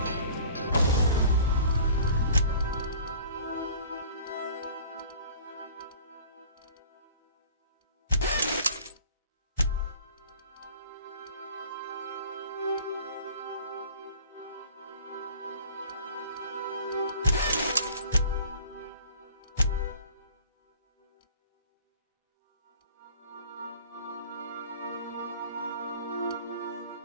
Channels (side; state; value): both; inverted; correlation -0.47